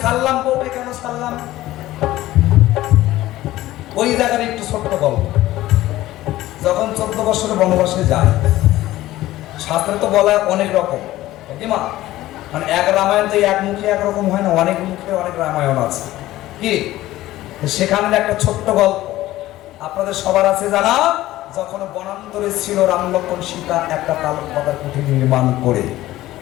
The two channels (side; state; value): right; quieter; 15.8 dB